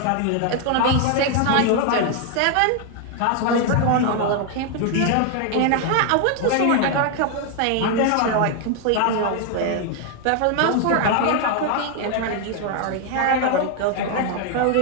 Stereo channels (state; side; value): different; both; correlation 0.00